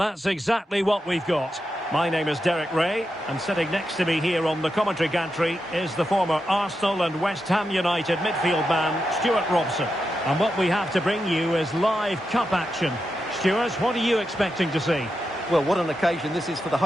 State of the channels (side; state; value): both; normal; correlation 0.87